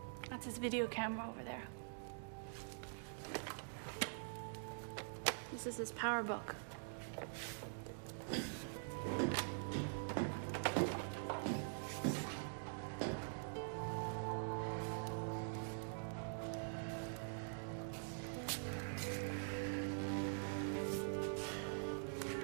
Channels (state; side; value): silent; left; digital silence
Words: That's his video camera over there. This is his power book.